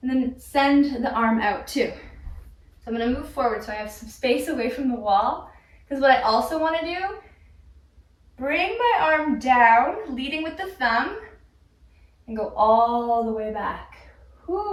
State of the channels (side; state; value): both; identical; correlation 1.00